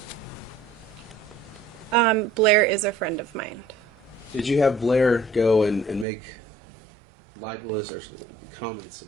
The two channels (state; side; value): drops out; left; at 6.1 s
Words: Blair is a friend of mine. Did you have Blair go and make libelous or comments